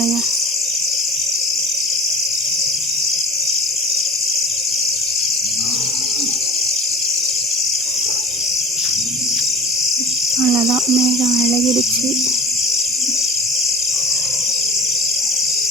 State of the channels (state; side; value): normal; both; correlation 0.38